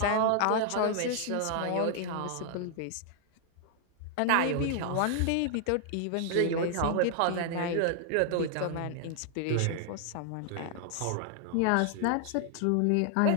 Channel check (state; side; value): different; both; correlation 0.00